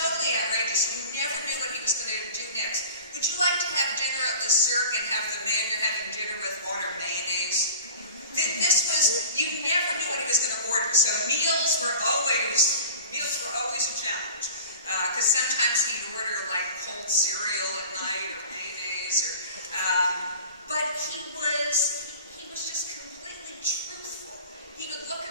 outrageous. You never knew what he was going to do next. Would you like to have dinner at Le Cirque and have the man you're having dinner with order mayonnaise? This was, you never knew what he was going to order. So meals were always a challenge. Because sometimes he'd order like cold cereal at night or mayonnaise, but he was just completely truthful. He would look at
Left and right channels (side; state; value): both; inverted; correlation -0.38